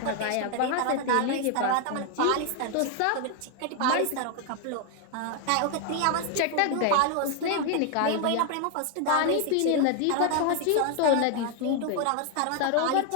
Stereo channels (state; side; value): different; both; correlation 0.01